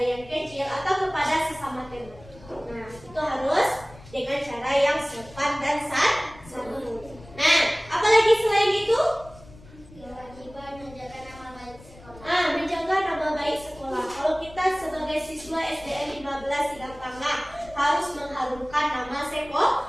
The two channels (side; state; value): left; noise; rumble, 20 dB below the sound